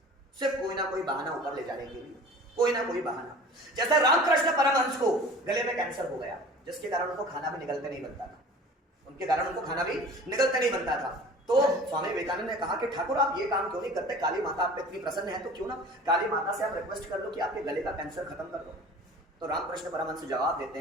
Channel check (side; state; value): both; normal; correlation 0.43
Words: सिर्फ कोई ना कोई बहाना ऊपर ले जाने के लिए, कोई ना कोई बहाना। जैसे रामकृष्ण परमहंस को गले में कैंसर हो गया, जिसके कारण उनको खाना भी निगलते नहीं बनता था, उनके कारण उनको खाना भी निगलते नहीं बनता था। तो स्वामी विवेकानंद ने कहा कि ठाकुर आप ये काम क्यों नहीं करते, काली माता आप पे इतनी प्रसन्न है तो क्यों ना काली माता से आप रिक्वेस्ट कर लो कि आपके गले का कैंसर खत्म कर दो। तो रामकृष्ण परमहंस जवाब देते